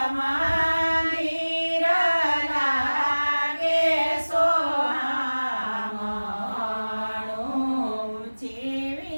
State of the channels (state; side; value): inverted; both; correlation -1.00